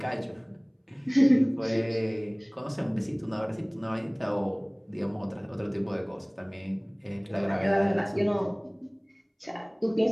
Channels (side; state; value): both; identical; correlation 1.00